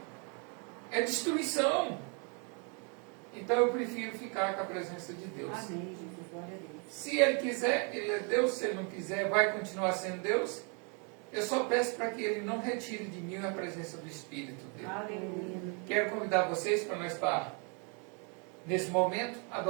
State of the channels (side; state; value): left; quieter; 36.4 dB